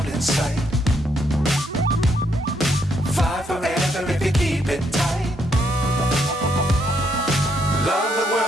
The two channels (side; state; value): both; normal; correlation 0.74